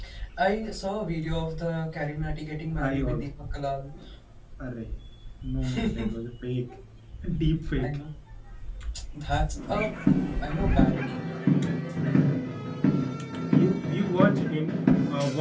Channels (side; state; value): both; identical; correlation 1.00